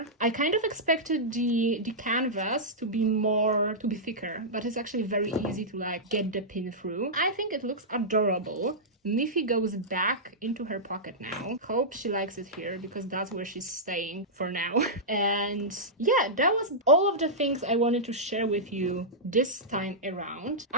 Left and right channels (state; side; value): normal; both; correlation -0.12